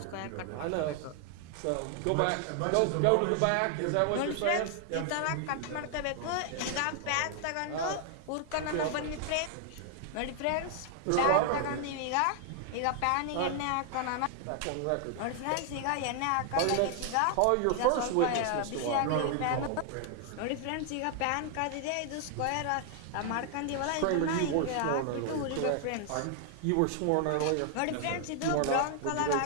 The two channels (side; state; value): both; different; correlation 0.00